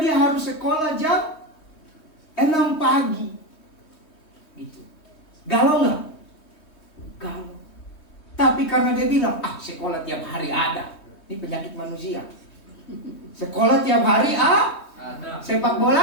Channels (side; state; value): right; late; 3.2 ms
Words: harus sekolah jam 6 pagi. Gitu. Galau nggak? Galau. Tapi karena dia bilang, sekolah tiap hari ada. Ini penyakit manusia. Sekolah tiap hari ada. Sepak